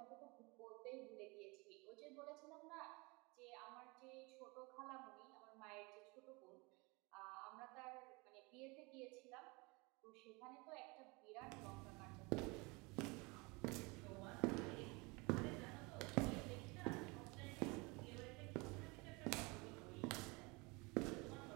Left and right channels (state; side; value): quieter; left; 27.0 dB